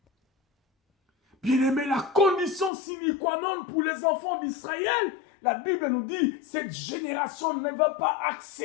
Bien aimé, la condition sine qua non pour les enfants d'Israël, la Bible nous dit, cette génération ne va pas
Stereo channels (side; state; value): right; drops out; at 2.7 s